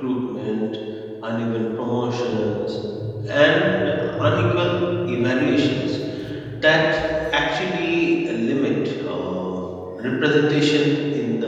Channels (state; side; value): identical; both; correlation 1.00